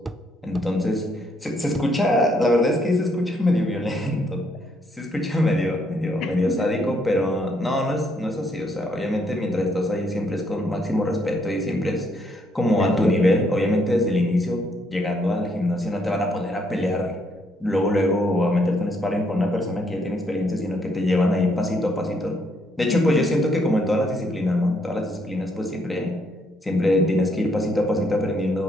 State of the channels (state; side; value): normal; both; correlation 0.72